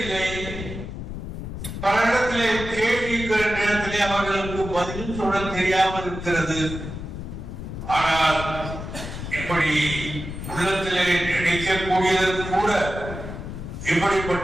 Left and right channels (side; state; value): left; noise; rumble, 8 dB below the sound